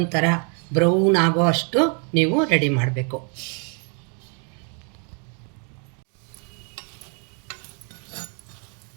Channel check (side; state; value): left; quieter; 39.2 dB